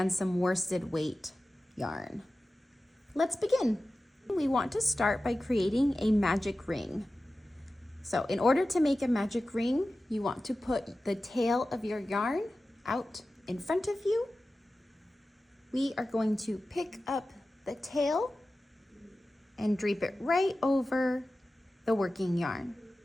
some worsted weight yarn. Let's begin. We want to start by creating a magic ring. So in order to make a magic ring, you want to put the tail of your yarn out in front of you. We are going to pick up the tail and drape it right over the working yarn.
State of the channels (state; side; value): normal; both; correlation 0.95